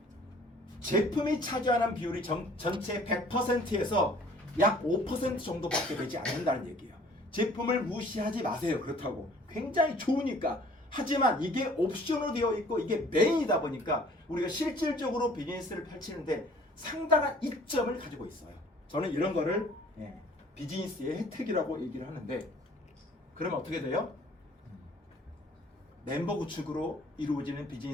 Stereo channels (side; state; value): both; normal; correlation 0.54